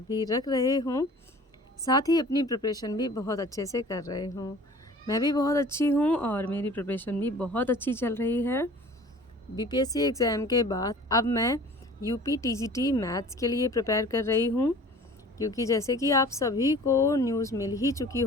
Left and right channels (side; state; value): both; normal; correlation 0.46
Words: भी रख रहे हों। साथ ही अपनी प्रिपरेशन भी बहुत अच्छे से कर रहे हों। मैं भी बहुत अच्छी हूँ और मेरी प्रिपरेशन भी बहुत अच्छी चल रही है। बीपीएससी एग्ज़ाम के बाद अब मैं यूपी टीजीटी मैथ्स के लिए प्रिपेयर कर रही हूँ, क्योंकि जैसे कि आप सभी को न्यूज़ मिल ही चुकी